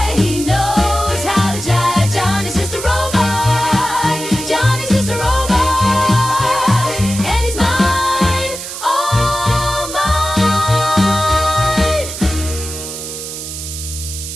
he knows how to jive. Johnny's just a robot, Johnny's just a robot. And he's mine, all mine.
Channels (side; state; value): right; noise; hiss, 8 dB below the sound